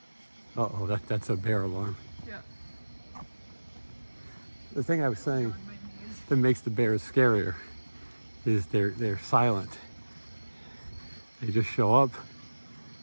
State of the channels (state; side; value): inverted; both; correlation -1.00